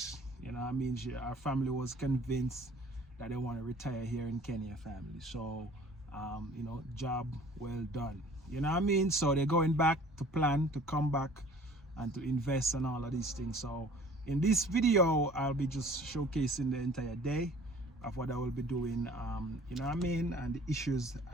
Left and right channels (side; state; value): both; normal; correlation 0.50